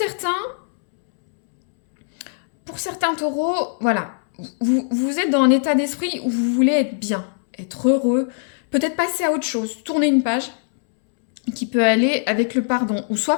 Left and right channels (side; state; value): right; silent; 65 dB below the other